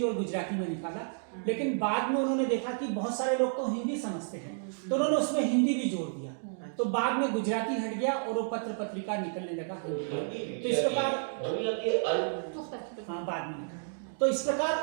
और गुजराती में निकाला, लेकिन बाद में उन्होंने देखा कि बहुत सारे लोग तो हिंदी समझते हैं, तो उन्होंने उसमें हिंदी भी जोड़ दिया। तो बाद में गुजराती हट गया और वो पत्र पत्रिका निकलने लगा हिंदी। तो इस प्रकार, हाँ, बाद में। तो इस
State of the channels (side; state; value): left; silent; digital silence